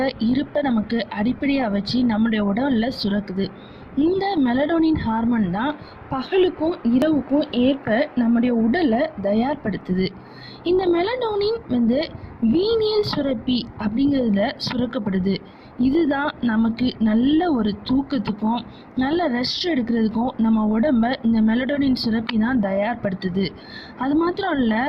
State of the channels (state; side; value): identical; both; correlation 1.00